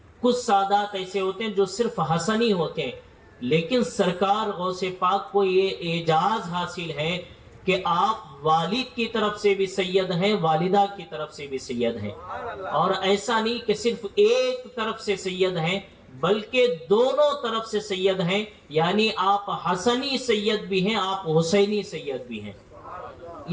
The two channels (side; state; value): both; identical; correlation 1.00